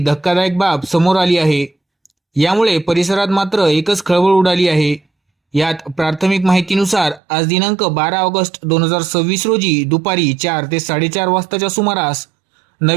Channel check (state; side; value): drops out; left; at 7.2 s